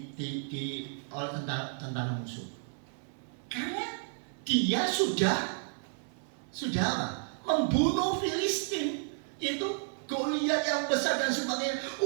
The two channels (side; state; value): left; silent; 56 dB below the other